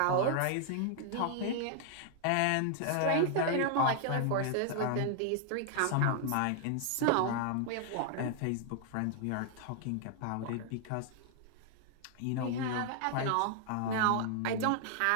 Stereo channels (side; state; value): both; different; correlation -0.01